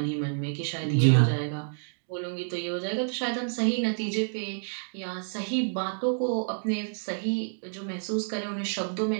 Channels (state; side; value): silent; left; digital silence